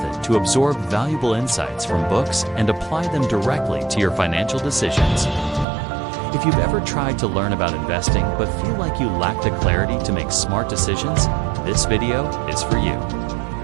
to absorb valuable insights from books and apply them directly to your financial decisions. If you've ever tried to learn about investing but feel like you lack the clarity to make smart decisions, this video is for you.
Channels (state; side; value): drops out; left; at 5.7 s